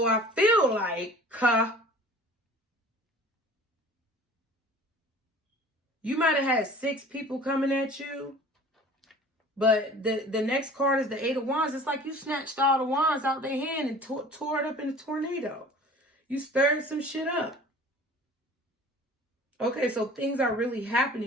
I feel like, you might have had 6 people coming at you. But the next card is the 8 of Wands. It's like you snatched all the wands out their hand and tore it up in a tornado. You stirred some shit up. Okay, so things are really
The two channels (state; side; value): normal; both; correlation 0.45